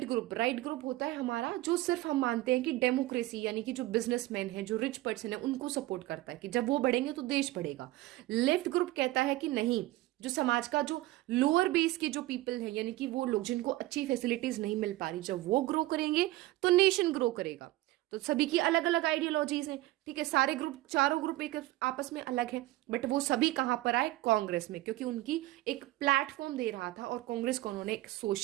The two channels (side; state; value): left; quieter; 17.6 dB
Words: ग्रुप, राइट ग्रुप होता है हमारा जो सिर्फ हम मानते हैं कि डेमोक्रेसी, यानी कि जो बिजनेसमैन है, जो रिच पर्सन है, उनको सपोर्ट करता है कि जब वो बढ़ेंगे तो देश बढ़ेगा। लेफ्ट ग्रुप कहता है कि नहीं, जो समाज का जो लोअर बेस के जो पीपल है, यानी कि वो लोग जिनको अच्छी फैसिलिटीज नहीं मिल पा रही, जब वो ग्रो करेंगे तो नेशन ग्रो करेगा। तो सभी की अलग अलग आइडियोलॉजीज हैं, ठीक है, सारे ग्रुप, चारों ग्रुप एक आपस में अलग है, बट वो सभी कहां पर आए? कांग्रेस में, क्योंकि उनकी एक प्लेटफॉर्म दे रहा था, और कांग्रेस को उन्होंने एक